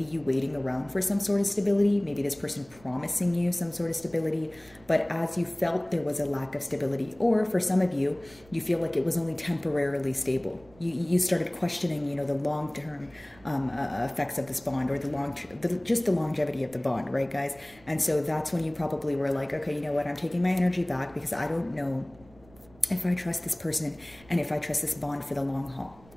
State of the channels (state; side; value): noise; right; rumble, 26 dB below the sound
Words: you waiting around for some sort of stability, maybe this person promising you some sort of stability, but as you felt there was a lack of stability, or for some of you, you feel like it was only temporarily stable. You started questioning, you know, the long-term effects of this bond, or just the longevity of the bond, right, guys? And so that's when you probably were like, okay, you know what, I'm taking my energy back because I don't know if I trust this person and if I trust this bond for the long haul,